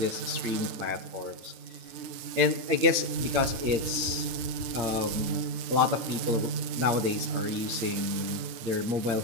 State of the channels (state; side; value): late; left; 9.2 ms